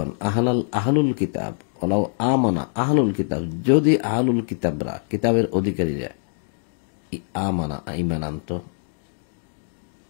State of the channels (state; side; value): silent; right; digital silence